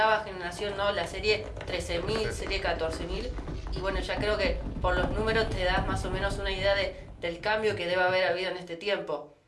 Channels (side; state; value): both; identical; correlation 1.00